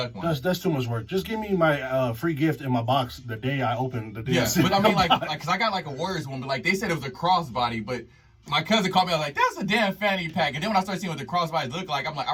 one. That's too much work. Just give me my free gift in my box the day I open the day. Yeah, but I mean like cause I got like a Warriors one, but like they said it was a crossbody, but My cousin called me. I was like, "That's a damn fanny pack." And then when I started seeing what the crossbodies look like, I'm like, I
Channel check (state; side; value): identical; both; correlation 1.00